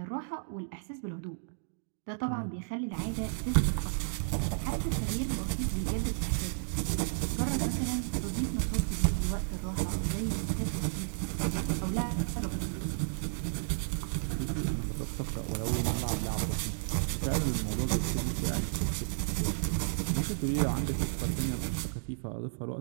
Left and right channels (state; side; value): silent; left; digital silence